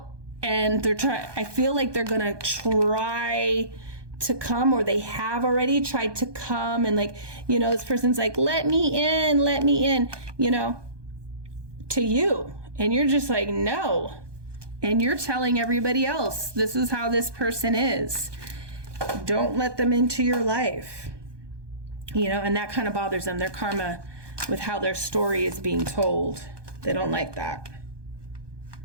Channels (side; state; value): left; late; 1.2 ms